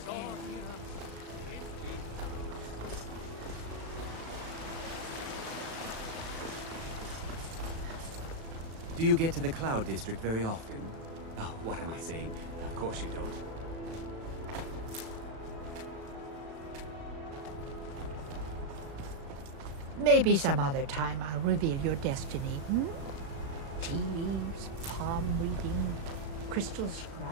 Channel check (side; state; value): left; late; 36 ms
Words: Do you get to the Cloud District very often? Oh, what am I saying? Of course you don't. Maybe some other time I'll reveal your destiny. Tea leaves, palm reading, crystal